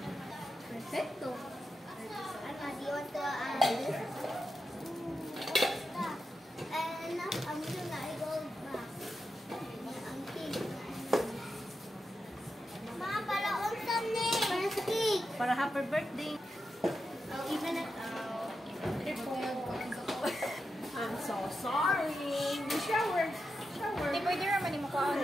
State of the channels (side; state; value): both; normal; correlation 0.88